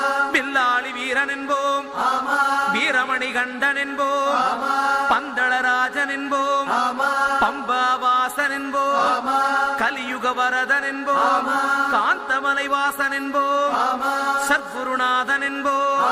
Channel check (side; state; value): both; identical; correlation 1.00